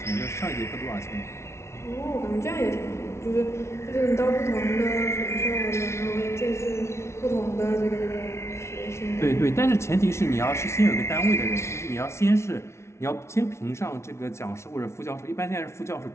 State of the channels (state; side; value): late; right; 0.13 ms